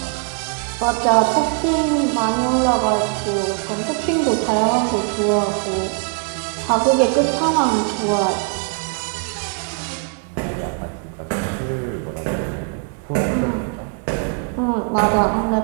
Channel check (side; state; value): left; quieter; 39.0 dB